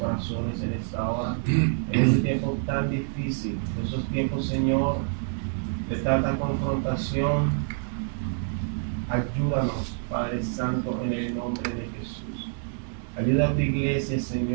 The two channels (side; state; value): left; silent; 59 dB below the other